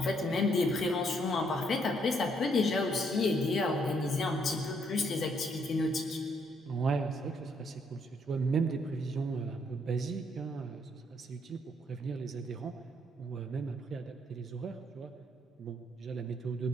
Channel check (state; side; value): normal; both; correlation 0.71